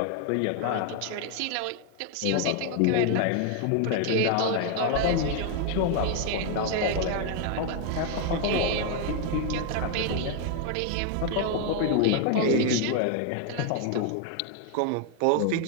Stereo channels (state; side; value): different; both; correlation 0.00